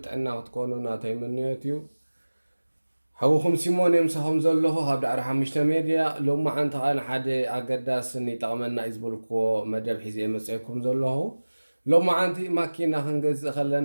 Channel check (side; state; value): both; inverted; correlation -1.00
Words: ጥዕና ክትኮኑ ናተይ ምንዮት እዩ። ሓዊኹም ሲሞን የምሳኹም ዘለኹ ኣብ ዳዕሮ ሓሙሽተ ሚድያ ሎማዓንቲ ከዓ ንሓደ ኣገዳስን ይጠቕመና እዩ ዝበልክዎ መደብ ሒዘ መፅአኩም ዘለኹ። ሎማዓንቲ ማኪና ክንገዝእ